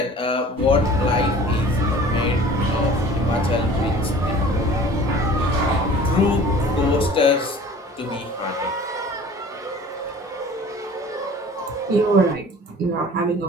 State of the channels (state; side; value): normal; both; correlation 0.46